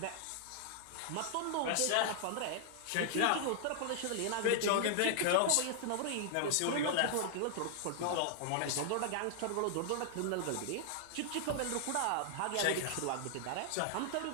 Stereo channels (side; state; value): both; different; correlation -0.01